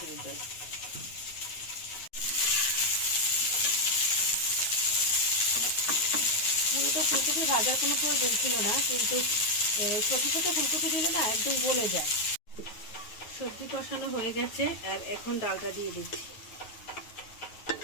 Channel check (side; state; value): right; late; 9.3 ms